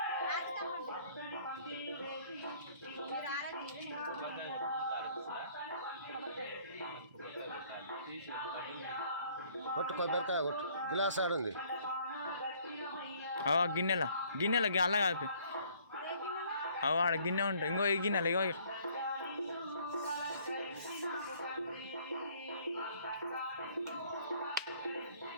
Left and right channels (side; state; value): both; inverted; correlation -0.60